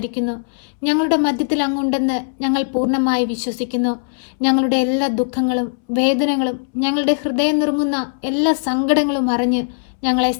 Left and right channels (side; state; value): right; silent; 66 dB below the other